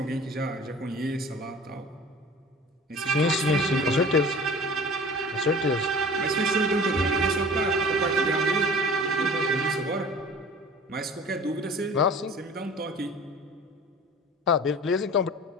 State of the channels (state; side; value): normal; both; correlation 0.42